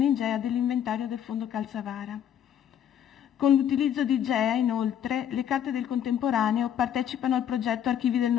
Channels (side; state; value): right; quieter; 9.7 dB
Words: in GEA dell'inventario del Fondo Calzavara. Con l'utilizzo di GEA, inoltre, le carte del contemporaneo partecipano al progetto Archivi del